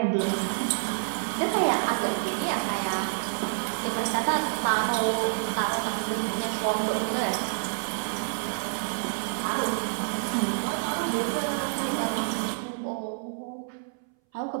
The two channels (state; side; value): silent; left; 59 dB below the other